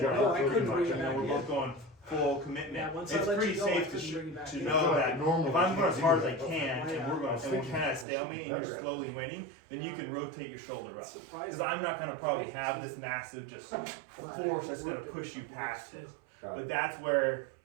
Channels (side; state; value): left; drops out; at 8.1 s